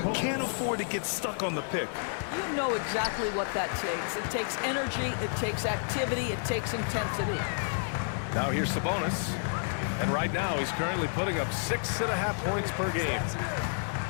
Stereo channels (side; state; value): right; silent; digital silence